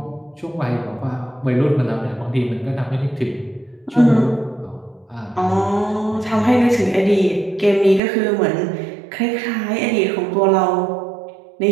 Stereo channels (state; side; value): drops out; left; at 8.0 s